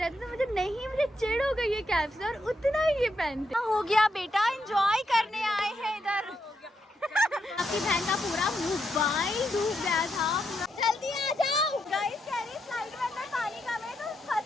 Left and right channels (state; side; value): normal; both; correlation 0.81